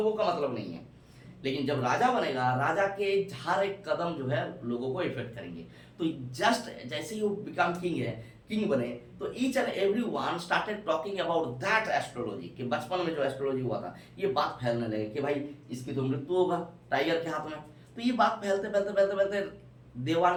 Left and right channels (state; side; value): identical; both; correlation 1.00